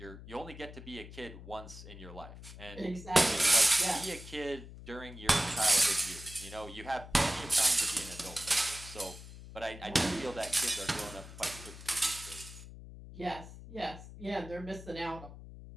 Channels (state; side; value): noise; left; hum, 15 dB below the sound